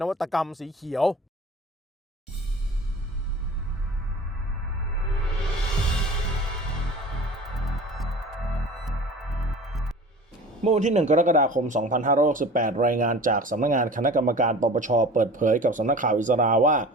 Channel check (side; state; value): both; normal; correlation 0.40